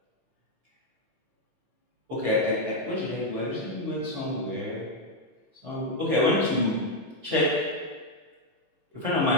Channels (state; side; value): late; left; 15 ms